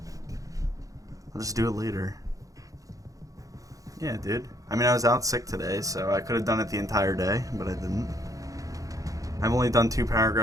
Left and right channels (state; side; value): late; left; 0.17 ms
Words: I'll just do it later. Yeah, dude. I mean, I was out sick today, so I could have done it the entire day, but I didn't. I've only done 2